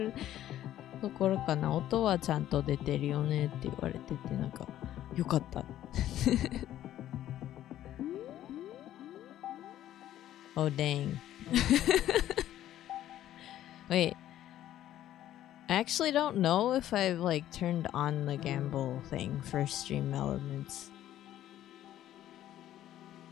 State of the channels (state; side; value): quieter; right; 12.5 dB